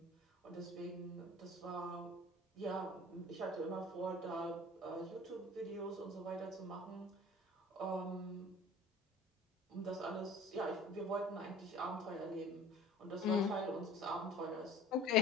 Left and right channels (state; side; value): normal; both; correlation 0.45